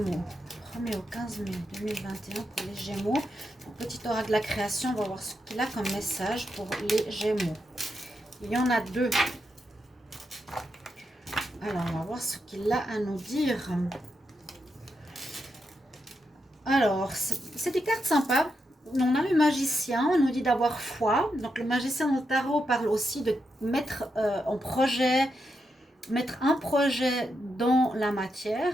1er au 15 mai 2021 pour les Gémeaux. Donc, petit oracle de la création, on va voir ce qu'il a comme message pour les Gémeaux. Il y en a deux. Alors, on va voir ce qu'il a à nous dire. Alors, c'est des cartes sympas. On a le magicien, on nous dit d'avoir foi. Donc, le magicien dans le tarot parle aussi de mettre mettre un projet dans la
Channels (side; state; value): both; normal; correlation 0.84